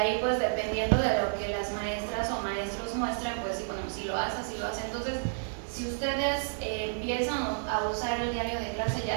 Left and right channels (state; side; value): silent; left; digital silence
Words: pues dependiendo de lo que las maestras o maestros muestren, pues sí, bueno, si lo hace, si lo hace. Entonces, si ustedes empiezan a usar el diario de clase, ya